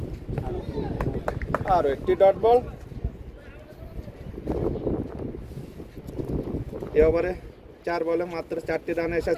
আর একটি ডট বল। এই ওভারে 4 বলে মাত্র 4টি রান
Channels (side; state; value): both; identical; correlation 1.00